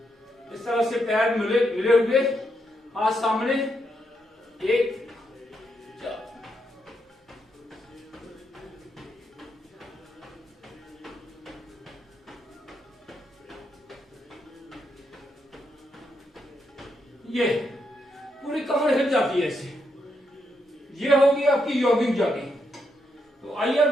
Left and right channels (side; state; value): both; normal; correlation 0.80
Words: इस तरह से पैर मिले हुए, हाथ सामने, 1 ये पूरी कमर हिल जाती है ऐसे। ये होगी आपकी यौगिक जॉगिंग। तो आइए